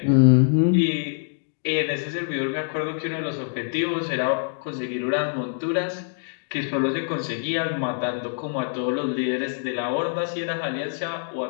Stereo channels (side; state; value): right; silent; digital silence